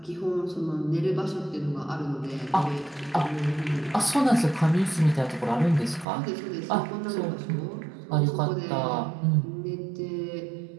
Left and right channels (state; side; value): drops out; left; at 6.1 s